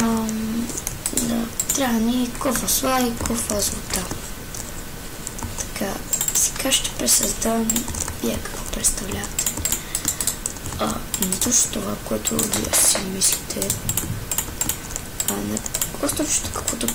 Да, трябва ни кофа сла и кофа злата. Така, сега ще пресъздам вие какво представлявате. Не точно това, което вие си мислите, не просто каквото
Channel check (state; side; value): identical; both; correlation 1.00